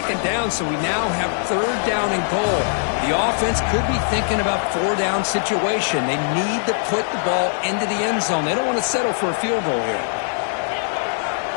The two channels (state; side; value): silent; right; 65 dB below the other